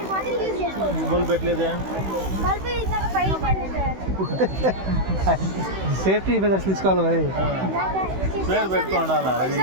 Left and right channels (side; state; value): left; late; 16 ms